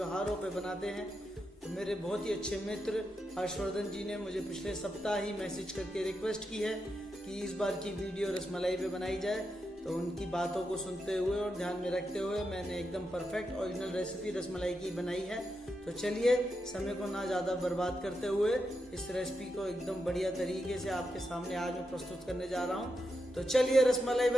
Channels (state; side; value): normal; both; correlation 0.86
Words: पे बनाते हैं। तो मेरे बहुत ही अच्छे मित्र हर्षवर्धन जी ने मुझे पिछले सप्ताह ही मैसेज करके रिक्वेस्ट की है कि इस बार की वीडियो रसमलाई पे बनाई जाए। तो उनकी बातों को सुनते हुए और ध्यान में रखते हुए मैंने एकदम परफेक्ट ओरिजिनल रेसिपी रसमलाई की बनाई है। तो चलिए समय को ना ज़्यादा बर्बाद करते हुए इस रेसिपी को एकदम बढ़िया तरीके से आपके सामने आज मैं प्रस्तुत करने जा रहा हूँ। तो चलिए रसमलाई